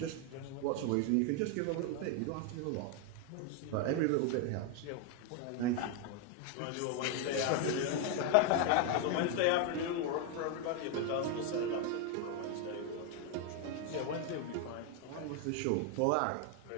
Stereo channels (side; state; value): both; different; correlation 0.01